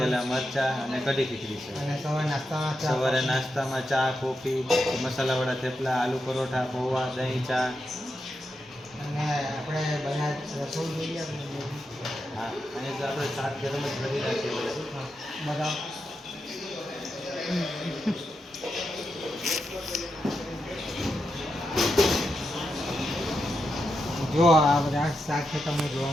મરચાં અને કઢી ખીચડી છે. સવારે નાસ્તામાં ચા, કોફી, મસાલાવાળા થેપલા, આલુ પરોઠા, પૌવા, દહીં, ચા. અને આપણે બધા રસોઈ જોઈએ. હા, અને તો આપણે શાક ગરમ જ કરી રાખીએ બધા. જો આ બધા શાક છે તમને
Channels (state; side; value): normal; both; correlation 0.87